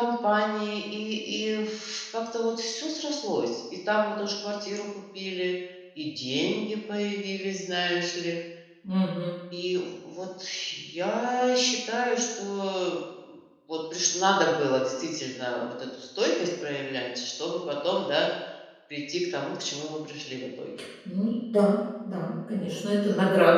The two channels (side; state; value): both; identical; correlation 1.00